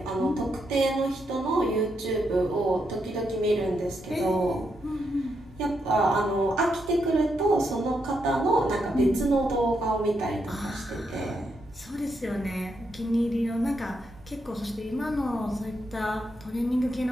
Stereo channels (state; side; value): normal; both; correlation 0.81